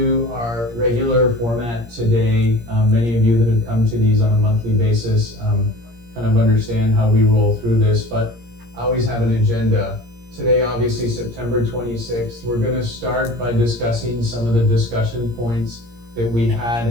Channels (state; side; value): late; left; 17 ms